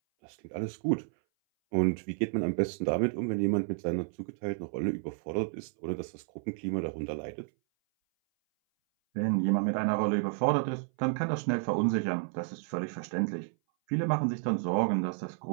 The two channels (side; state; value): left; silent; 57 dB below the other